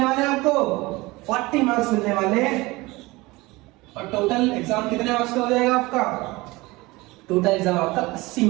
वाले हैं आपको? 40 मार्क्स मिलने वाले हैं। और टोटल एग्जाम कितने मार्क्स का हो जाएगा आपका? टोटल एग्जाम आपका 80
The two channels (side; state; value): left; quieter; 21.8 dB